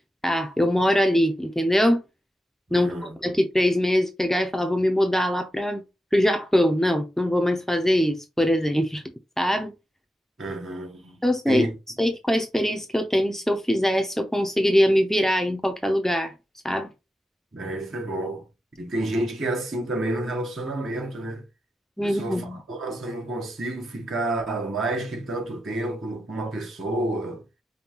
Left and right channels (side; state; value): both; normal; correlation 0.89